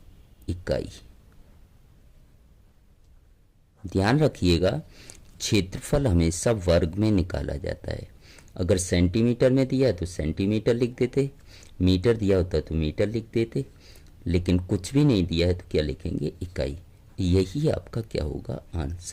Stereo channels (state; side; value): identical; both; correlation 1.00